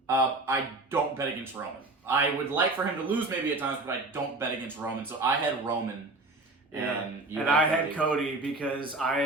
I don't bet against Roman. I would like for him to lose maybe at times, but I don't bet against Roman. So I had Roman. And I had Cody because I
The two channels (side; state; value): left; quieter; 3.0 dB